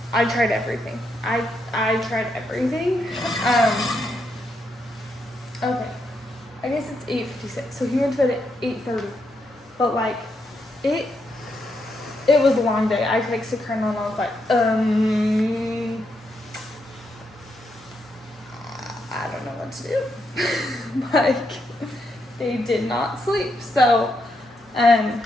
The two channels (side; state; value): both; normal; correlation 0.80